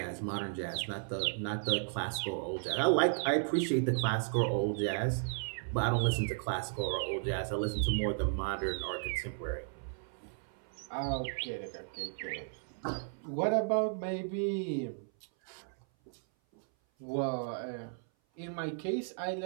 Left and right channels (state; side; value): silent; left; 55 dB below the other